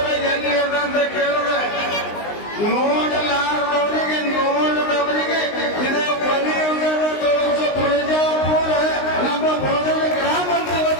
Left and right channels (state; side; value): late; right; 19 ms